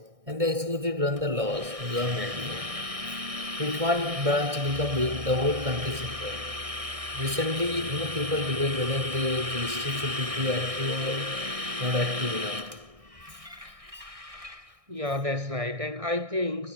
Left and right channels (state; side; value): late; left; 1.6 ms